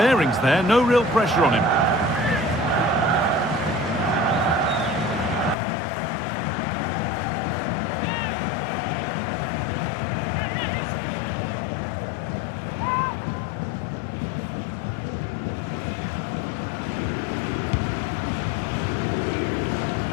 there. No real pressure on him.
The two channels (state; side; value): drops out; right; at 5.6 s